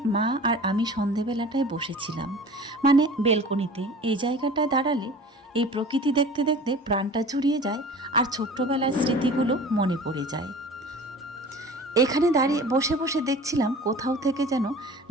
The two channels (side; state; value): both; normal; correlation 0.41